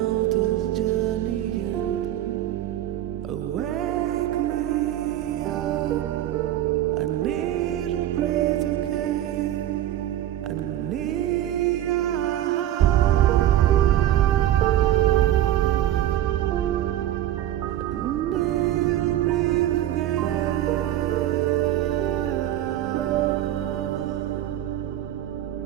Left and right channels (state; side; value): quieter; left; 12.8 dB